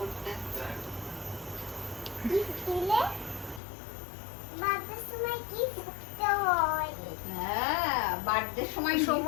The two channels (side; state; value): right; drops out; at 3.6 s